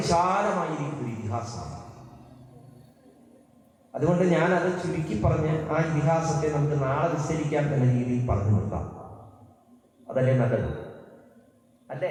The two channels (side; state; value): both; identical; correlation 1.00